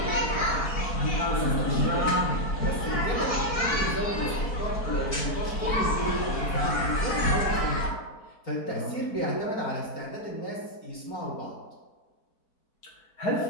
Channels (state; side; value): late; right; 4.6 ms